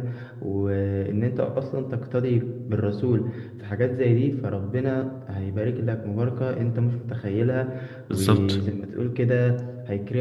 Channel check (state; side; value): identical; both; correlation 1.00